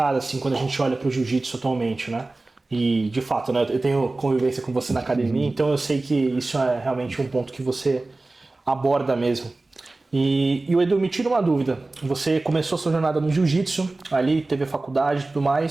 assim, quando a gente olha para o jiu-jitsu atualmente, né? E, de fato, né, eu tenho convivência com você na academia, então eu sei que isso é realmente um ponto que você aborda mesmo. E o Edu, me tira uma dúvida. Você começou a sua jornada no jiu-jitsu, ali teve a faculdade e tudo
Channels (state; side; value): quieter; left; 3.1 dB